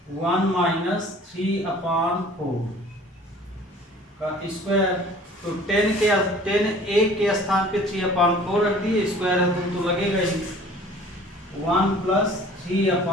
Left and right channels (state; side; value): normal; both; correlation 0.49